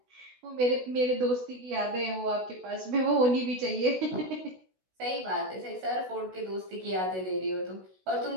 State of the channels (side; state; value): left; late; 16 ms